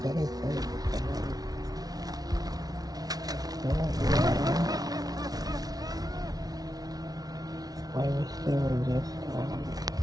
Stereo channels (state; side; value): late; left; 0.19 ms